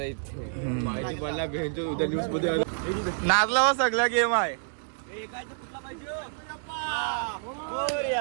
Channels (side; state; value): left; silent; digital silence